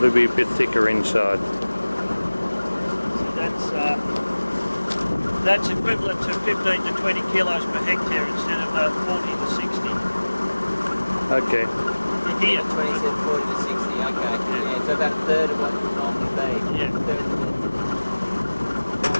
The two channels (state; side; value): inverted; both; correlation -1.00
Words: to be a bit thicker inside. That's equivalent to 15 to 20 kilos per hectare instead of 40 to 60. Okay. Here. 27, 40 to 60, okay. Yeah, so about a third of what it would normally be. Yeah.